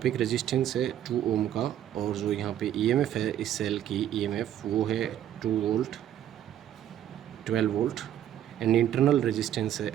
एक रेजिस्टेंस है 2 ओम का, और जो यहाँ पे EMF है इस सेल की EMF वो है 2 volt 12 volt, and internal resistance है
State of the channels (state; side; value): quieter; left; 11.1 dB